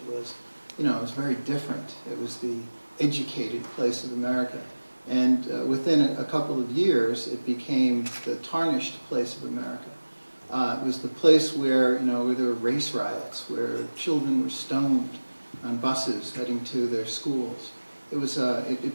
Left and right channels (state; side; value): inverted; both; correlation -1.00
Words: was, you know, it was very different. It was the educated place of America. And within a couple of years, it became the tarnished place of America. It was the place where, you know, where there were race riots, where children were stoned on buses heading to their schools. It was